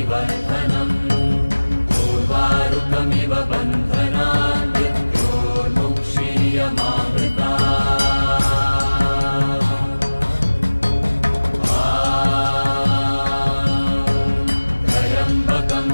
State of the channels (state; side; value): inverted; both; correlation -1.00